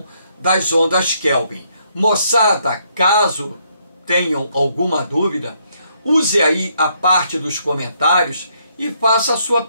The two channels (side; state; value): both; inverted; correlation -0.72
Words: das ondas Kelvin. Moçada, caso tenham alguma dúvida, use aí a parte dos comentários e faça a sua